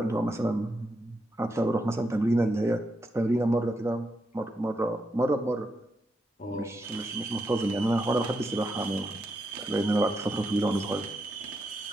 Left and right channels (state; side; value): normal; both; correlation 0.83